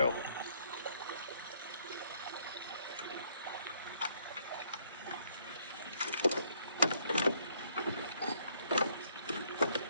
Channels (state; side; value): inverted; both; correlation -0.67